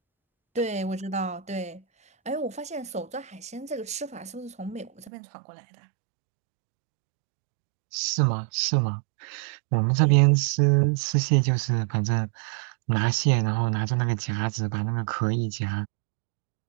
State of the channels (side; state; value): left; drops out; at 5.1 s